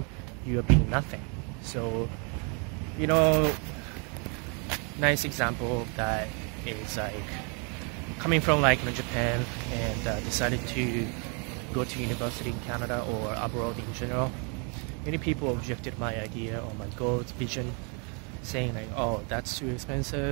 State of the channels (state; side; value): quieter; left; 35.8 dB